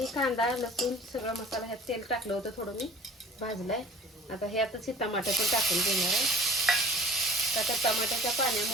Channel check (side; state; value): both; normal; correlation 0.47